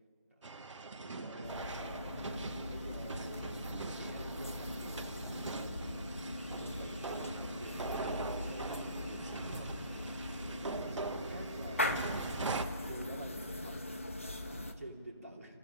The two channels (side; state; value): both; inverted; correlation -0.52